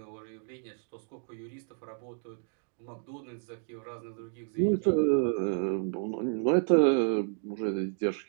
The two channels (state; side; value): silent; left; 57 dB below the other